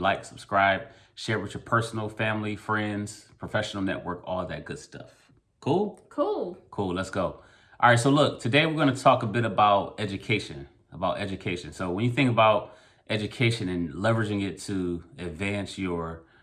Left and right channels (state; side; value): identical; both; correlation 1.00